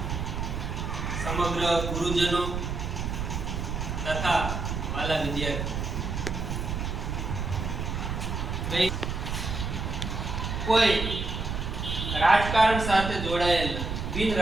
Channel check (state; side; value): noise; right; rumble, 3 dB below the sound